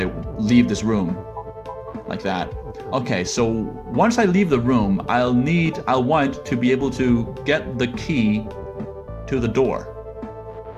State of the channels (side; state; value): both; identical; correlation 1.00